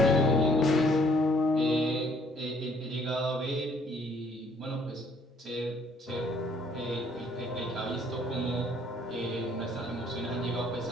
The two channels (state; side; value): normal; both; correlation 0.63